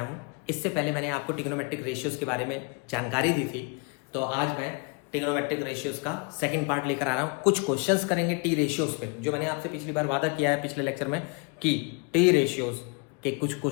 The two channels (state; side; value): quieter; right; 33.5 dB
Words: हूँ। इससे पहले मैंने आपको ट्रिग्नोमेट्रिक रेशियोज के बारे में जानकारी दी थी, तो आज मैं ट्रिग्नोमेट्रिक रेशियोज का सेकंड पार्ट लेकर आ रहा हूँ। कुछ क्वेश्चंस करेंगे टी रेशियोज पे, जो मैंने आपसे पिछली बार वादा किया है पिछले लेक्चर में कि टी रेशियोज के कुछ